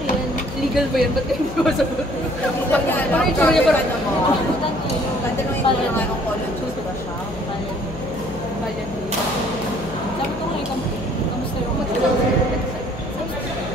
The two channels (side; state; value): left; noise; hum, 11 dB below the sound